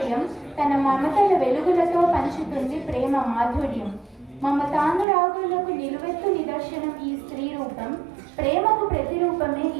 తన మమతల వెలుగులతో పంచుతుంది ప్రేమ మాధుర్యం. మమతానురాగులకు నిలువెత్తు నిదర్శనం ఈ స్త్రీ రూపం, ప్రేమకు ప్రతిరూపమే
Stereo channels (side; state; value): left; drops out; at 5.1 s